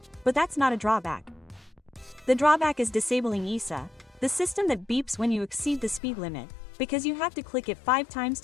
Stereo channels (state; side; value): drops out; right; at 6.0 s